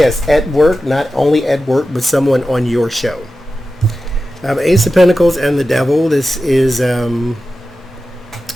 at work, not only at work, but someone on your show. Ace of Pentacles and the Devil. This is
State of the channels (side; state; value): both; normal; correlation 0.93